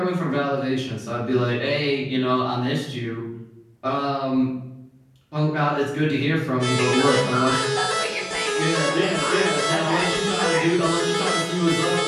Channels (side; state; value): both; identical; correlation 1.00